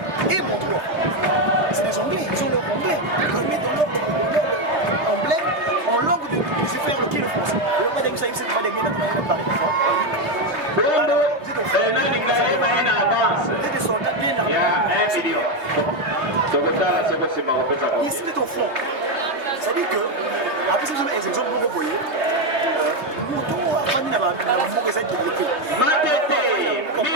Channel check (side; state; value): left; late; 3.3 ms